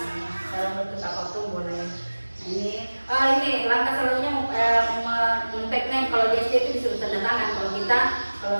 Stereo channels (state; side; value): inverted; both; correlation -1.00